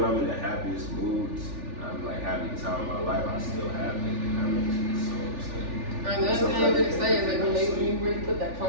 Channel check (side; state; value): left; late; 3.4 ms